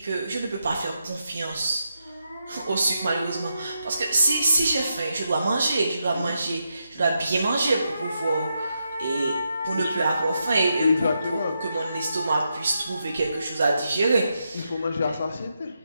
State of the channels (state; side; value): inverted; both; correlation -0.84